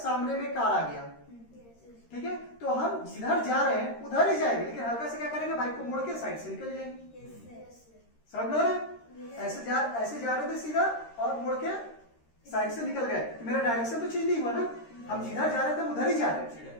में कार आ गया, ठीक है, तो हम जिधर जा रहे हैं उधर ही जाएंगे, लेकिन हल्का से क्या करेंगे, बाइक को मोड़ के साइड से निकल जाएंगे। समझ में आ रहा है? ऐसे जा रहे थे सीधा और मुड़ के साइड से निकल गए, तो मेरा डायरेक्शन तो चेंज नहीं हुआ ना, हम जिधर जा रहे थे उधर ही जा रहे थे,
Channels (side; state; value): right; late; 13 ms